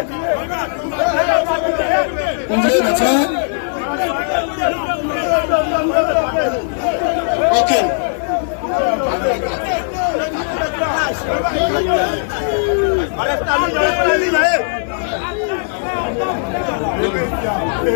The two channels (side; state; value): right; silent; 67 dB below the other